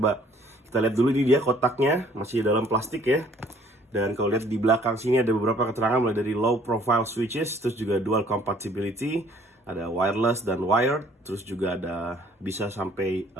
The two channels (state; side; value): normal; both; correlation 0.58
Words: kita lihat dulu, ini dia kotaknya, masih dalam plastik ya. Dan kalau lihat di belakang sini ada beberapa keterangan mulai dari low profile switches, terus juga dual compatibility, ada wireless dan wired, terus juga ada bisa sampai